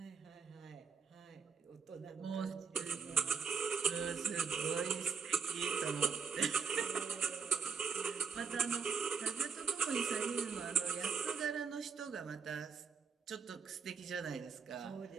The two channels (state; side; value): quieter; left; 5.7 dB